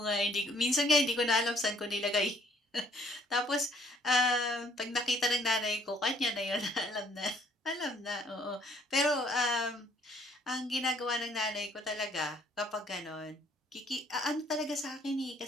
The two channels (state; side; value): normal; both; correlation 0.63